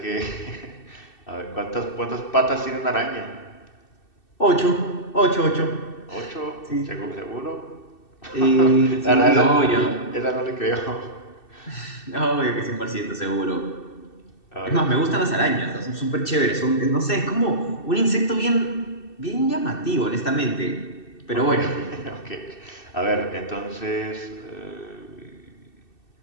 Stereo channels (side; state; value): right; late; 2.6 ms